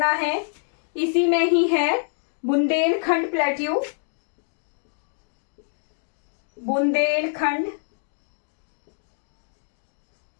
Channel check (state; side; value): silent; right; 61 dB below the other